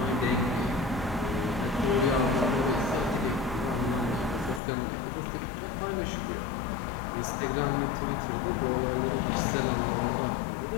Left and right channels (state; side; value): drops out; right; at 4.6 s